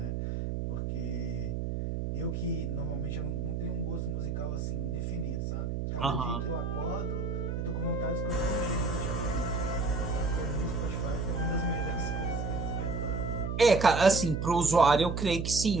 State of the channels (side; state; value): right; noise; hum, 2 dB below the sound